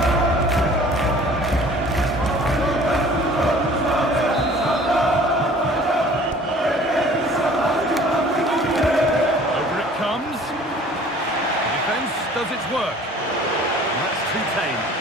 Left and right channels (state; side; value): normal; both; correlation 0.50